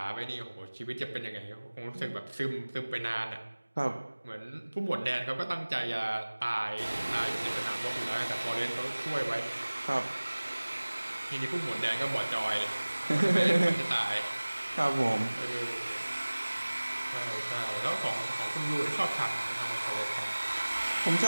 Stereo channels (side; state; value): both; inverted; correlation -1.00